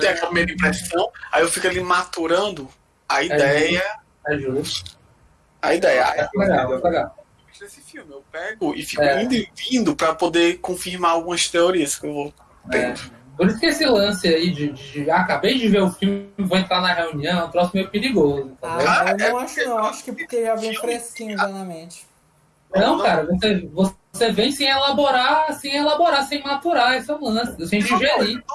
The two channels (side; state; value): both; identical; correlation 1.00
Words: a primeira impressão, aí eu fico ali maturando a ideia. É justo. A ideia. Legal. Desse filme, eu pego e fico indo e vindo pra poder confirmar algumas teorias que eu vou tendo. Por isso que esse lance aí de acabei de ver o filme, vou entrar na reunião, é um troço meio perigoso. Eu não acho não, acho que porque já vem fresquinho já na mente. Não, cara, você vem sem elaborar, sem maturar, esse é o lance, sem digerir.